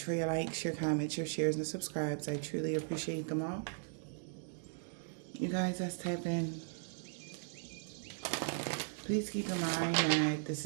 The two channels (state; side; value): silent; left; digital silence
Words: for your likes, your comments, your shares, and subscribes. I truly appreciate them all. You guys that's tapping, please keep in mind that this